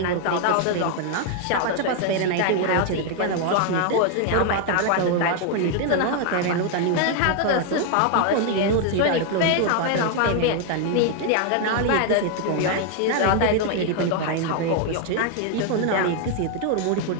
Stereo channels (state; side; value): different; both; correlation 0.00